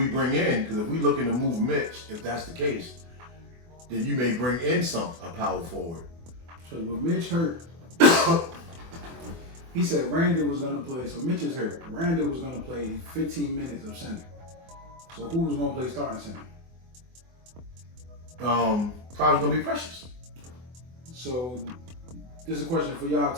bring in, because if we looking to move Mitch, if that's the case, then you may bring in a power forward. So with Mitch hurt, he said Randall was gonna play. So Mitch is hurt. Randall was gonna play 15 minutes of center. So who was gonna play starting center? Probably gonna be Precious. So this is a question for y'all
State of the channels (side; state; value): left; late; 24 ms